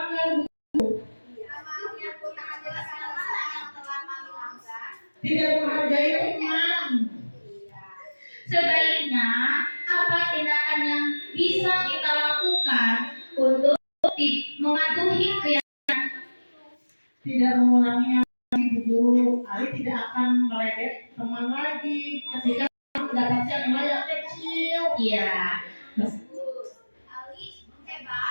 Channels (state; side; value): inverted; both; correlation -1.00